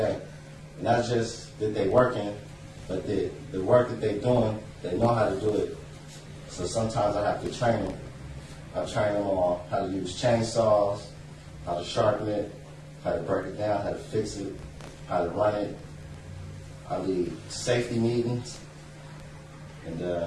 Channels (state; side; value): identical; both; correlation 1.00